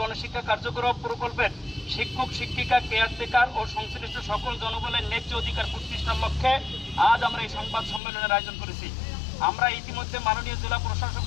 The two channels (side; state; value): right; drops out; at 8.0 s